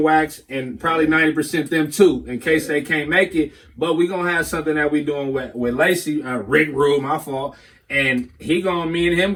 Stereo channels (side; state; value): both; identical; correlation 1.00